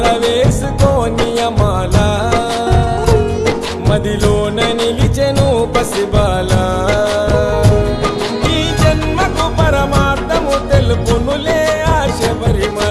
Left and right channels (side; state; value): both; identical; correlation 1.00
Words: వేసుకోని మాల, మదిలోన నిలిచెను పసిబాల. ఈ జన్మకు పరమార్థము తెలుపునులే ఆ